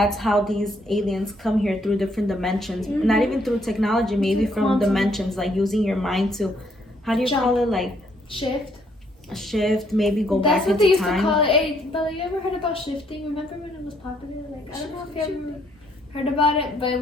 how these aliens come here, through different dimensions. Not even through technology, maybe Through from quantum. dimensions, like using your mind to, how do you Jump. call it, like Shift. a shift, maybe go That's back what they into used time. to call it. Hey, Bella, you ever heard about shifting? Remember when it was popular? Like, I don't know if you ever heard about it, but it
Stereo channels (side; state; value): both; normal; correlation 0.69